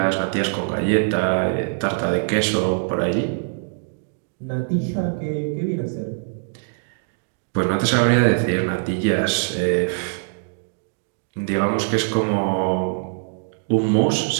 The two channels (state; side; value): silent; left; digital silence